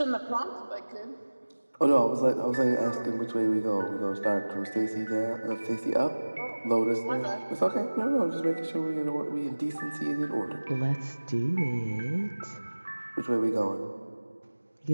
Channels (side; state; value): both; inverted; correlation -1.00